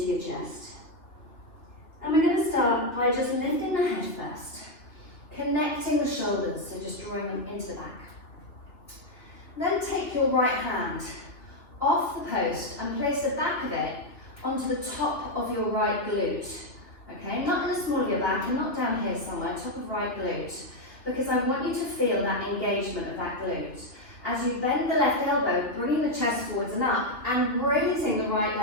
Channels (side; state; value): right; late; 2.7 ms